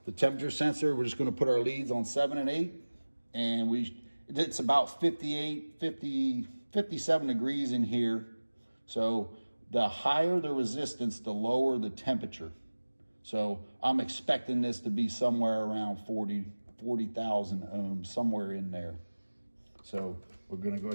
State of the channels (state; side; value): inverted; both; correlation -1.00